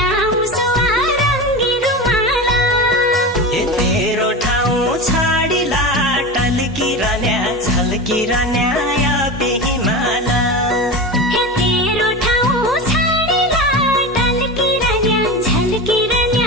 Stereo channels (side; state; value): both; normal; correlation 0.25